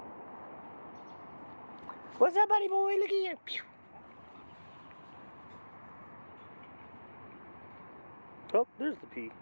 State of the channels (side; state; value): both; inverted; correlation -1.00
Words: What's up, buddy boy? Look at you. Pew. Oh, there's the pee.